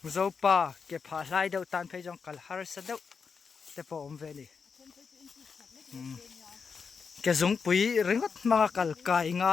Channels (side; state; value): right; quieter; 5.6 dB